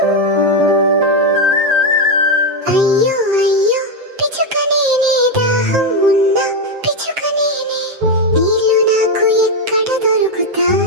అయ్యో అయ్యో పిచ్చుక నేనే, దాహం ఉన్న పిచ్చుక నేనే, నీళ్ళు నాకు ఎక్కడ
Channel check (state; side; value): late; left; 7.6 ms